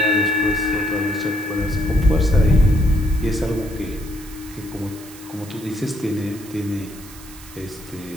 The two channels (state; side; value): noise; right; hiss, 18 dB below the sound